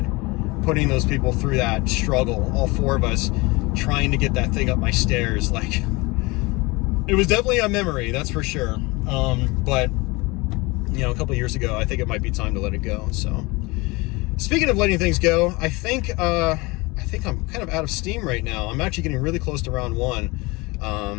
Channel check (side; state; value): right; quieter; 24.4 dB